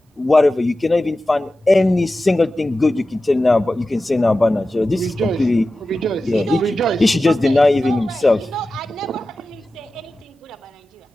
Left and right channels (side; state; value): both; normal; correlation 0.94